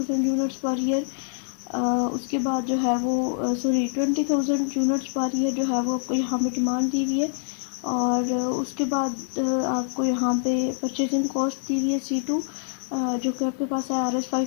यूनिट्स पर ईयर। उसके बाद जो है वो 20,000 यूनिट्स पर ईयर जो है वो आपको यहाँ पे डिमांड दी हुई है, और उसके बाद आपको यहाँ पे परचेजिंग कॉस्ट दी हुई है C2 जो कि आपके पास है Rs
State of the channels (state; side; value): silent; right; digital silence